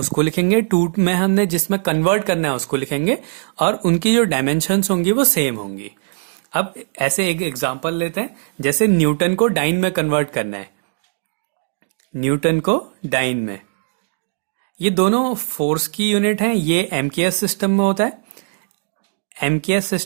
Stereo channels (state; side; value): silent; left; 63 dB below the other